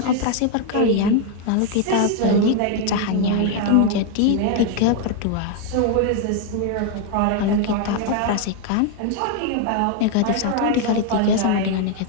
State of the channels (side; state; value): both; different; correlation 0.00